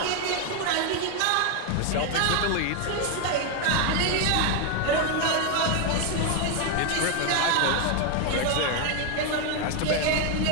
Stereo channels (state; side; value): different; both; correlation 0.01